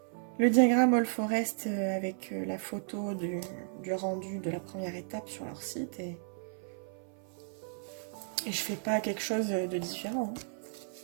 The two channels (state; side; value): silent; left; 55 dB below the other